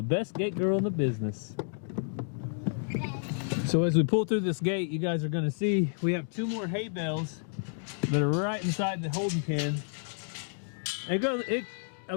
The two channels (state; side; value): silent; right; digital silence